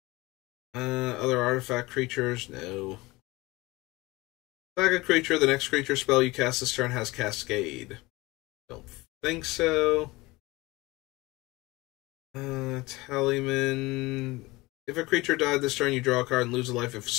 Other artifact creatures, no. Sack a creature, the next creature spell you cast this turn has Cascade. Don't think so. Tallyman. If a creature died this turn, you draw a card and lose a life. If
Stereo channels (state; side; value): quieter; right; 21.6 dB